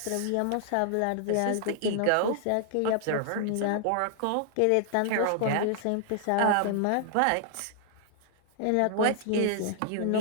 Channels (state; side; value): different; both; correlation -0.01